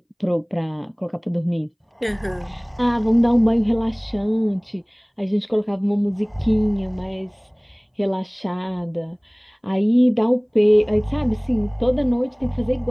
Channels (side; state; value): both; identical; correlation 1.00